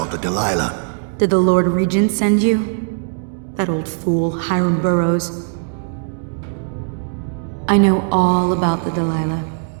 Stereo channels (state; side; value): silent; left; digital silence